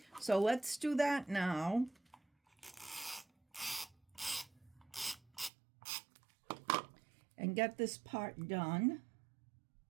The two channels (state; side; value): drops out; left; at 5.5 s